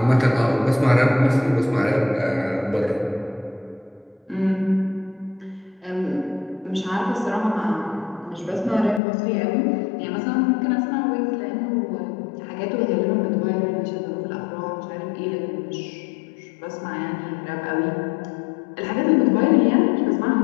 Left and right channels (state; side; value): drops out; right; at 9.0 s